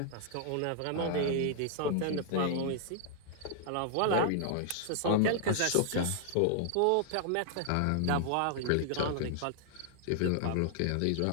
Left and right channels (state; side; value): different; both; correlation 0.00